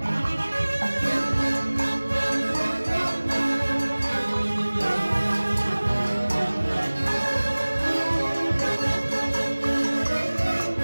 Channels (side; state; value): both; inverted; correlation -1.00